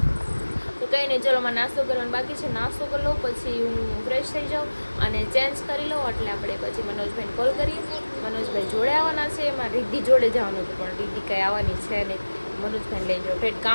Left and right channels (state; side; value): inverted; both; correlation -1.00